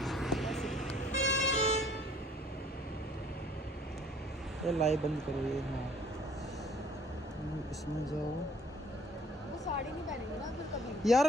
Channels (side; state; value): both; normal; correlation 0.58